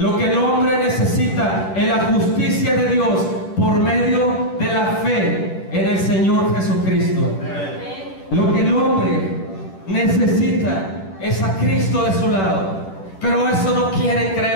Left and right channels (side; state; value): right; late; 10 ms